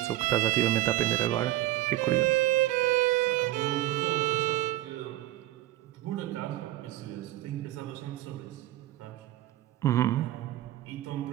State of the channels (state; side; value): quieter; left; 15.5 dB